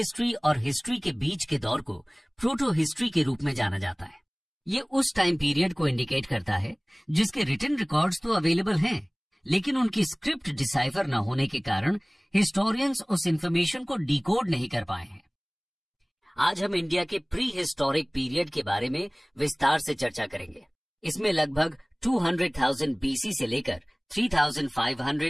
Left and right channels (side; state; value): both; identical; correlation 1.00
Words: और हिस्ट्री के बीच के दौर को प्रोटो हिस्ट्री के रूप में जाना जाता है। ये उस टाइम पीरियड को इंडिकेट करता है जिसके रिटन रिकॉर्ड्स तो अवेलेबल हैं, लेकिन उनकी स्क्रिप्ट डिसाइफर न होने के कारण हिस्टोरियंस उस इंफॉर्मेशन को डिकोड नहीं कर पाए हैं। आज हम इंडिया के प्री हिस्टोरिक पीरियड के बारे में विस्तार से चर्चा करेंगे। इसमें लगभग 200,000 बीसी से लेकर